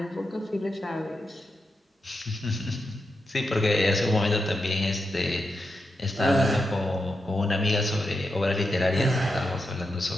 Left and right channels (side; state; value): both; normal; correlation 0.86